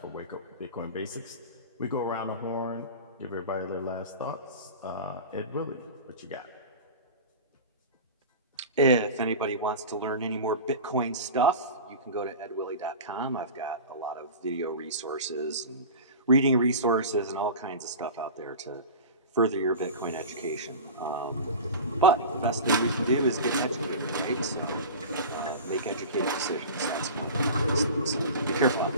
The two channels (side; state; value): both; inverted; correlation -0.32